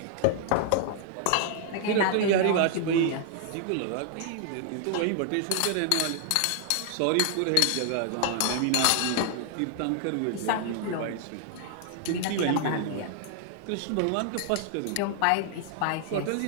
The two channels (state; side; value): different; both; correlation 0.00